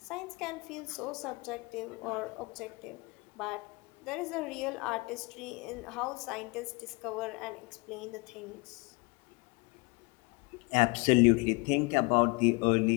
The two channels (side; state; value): right; quieter; 27.4 dB